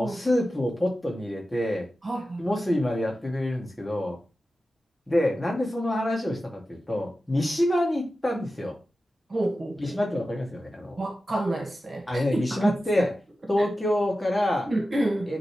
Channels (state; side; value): normal; both; correlation 0.93